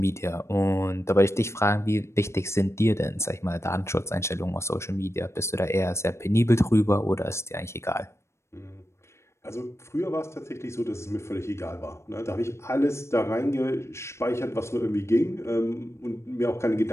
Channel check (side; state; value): right; late; 0.13 ms